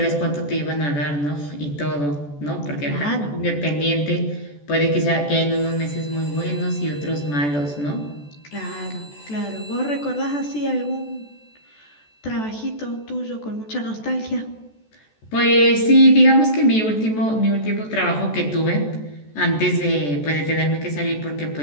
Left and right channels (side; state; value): right; late; 14 ms